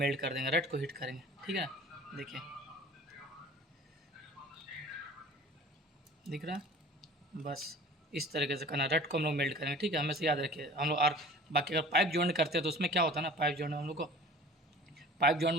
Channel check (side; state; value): both; normal; correlation 0.44